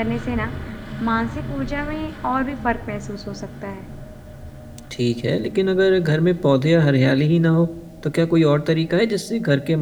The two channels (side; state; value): both; identical; correlation 1.00